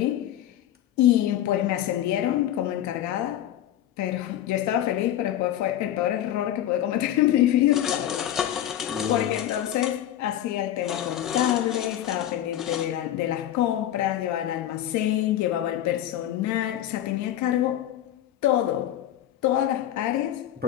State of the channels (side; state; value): right; quieter; 12.0 dB